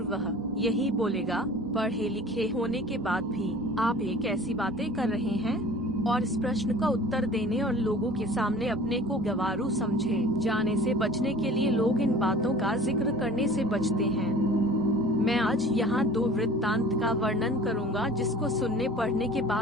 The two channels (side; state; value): both; normal; correlation 0.44